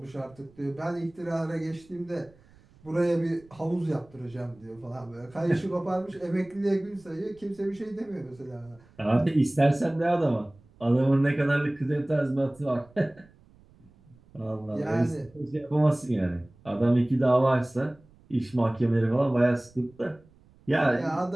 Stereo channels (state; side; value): noise; right; rumble, 28 dB below the sound